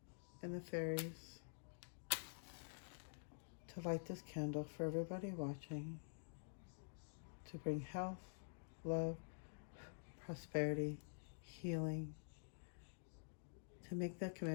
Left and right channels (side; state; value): right; silent; digital silence